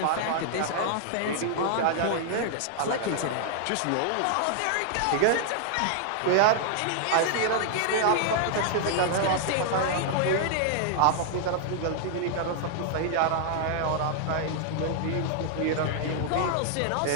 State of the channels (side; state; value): both; different; correlation 0.00